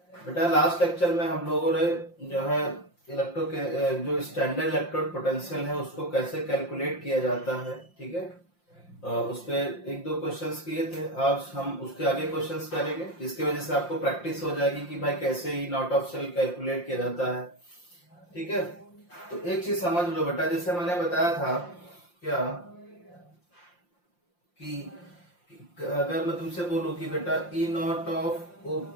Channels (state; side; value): late; right; 5.7 ms